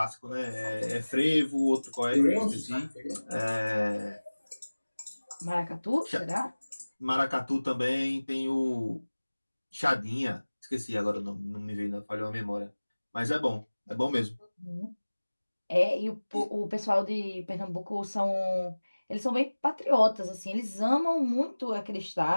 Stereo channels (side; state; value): both; inverted; correlation -1.00